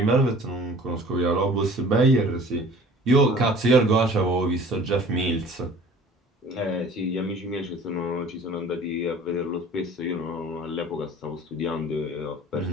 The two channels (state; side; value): normal; both; correlation 0.46